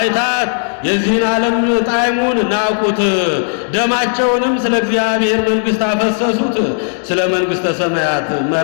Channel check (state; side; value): silent; right; digital silence